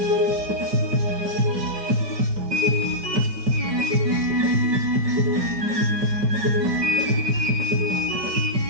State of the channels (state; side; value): late; left; 5.2 ms